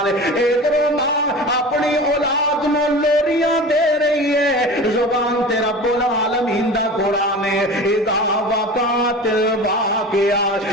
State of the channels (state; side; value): normal; both; correlation 0.34